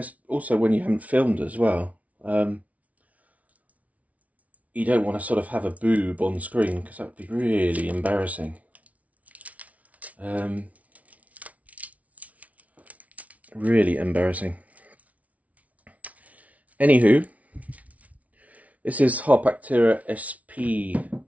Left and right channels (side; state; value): left; late; 0.068 ms